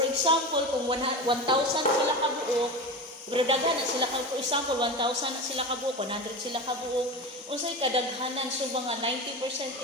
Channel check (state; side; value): normal; both; correlation 0.26